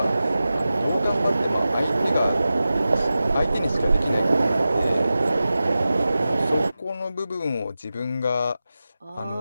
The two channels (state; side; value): inverted; both; correlation -0.94